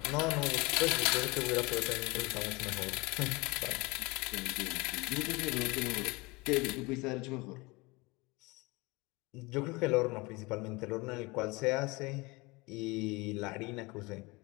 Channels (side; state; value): right; quieter; 24.8 dB